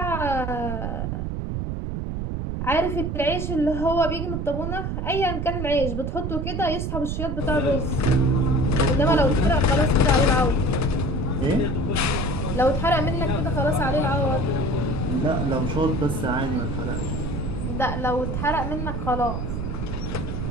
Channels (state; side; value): noise; right; rumble, 3 dB below the sound